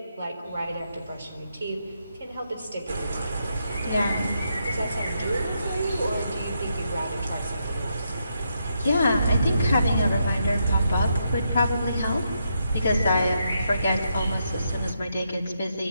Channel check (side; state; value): both; inverted; correlation -0.80